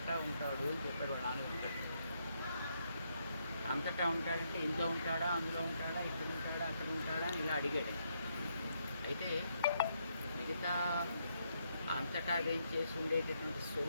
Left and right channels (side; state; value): both; inverted; correlation -0.77